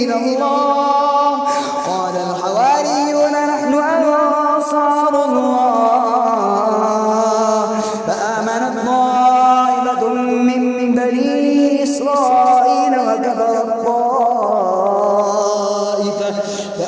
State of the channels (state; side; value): identical; both; correlation 1.00